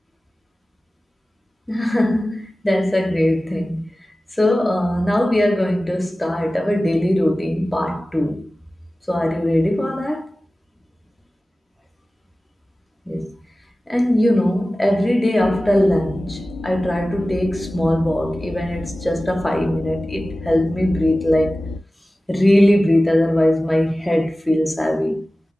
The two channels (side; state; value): both; normal; correlation 0.96